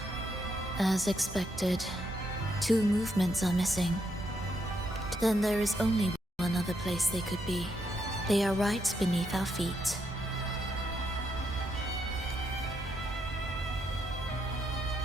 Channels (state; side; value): normal; both; correlation 0.78